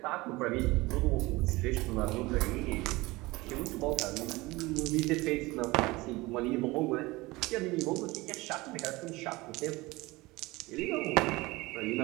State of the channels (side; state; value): left; quieter; 21.4 dB